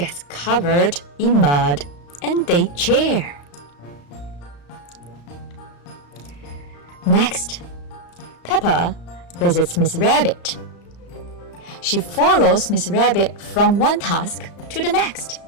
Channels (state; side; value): late; right; 35 ms